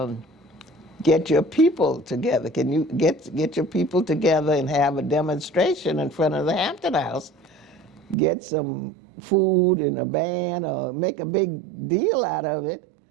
get your people together. Can you get your people together and have a demonstration in front of the Hampton House? Get some food and a band, or make a big deal out of it,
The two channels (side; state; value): left; drops out; at 8.2 s